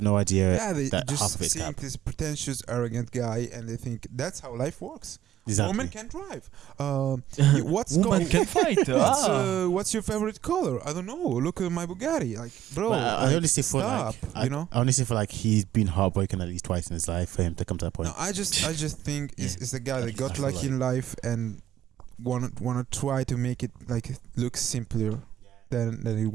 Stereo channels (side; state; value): left; quieter; 12.2 dB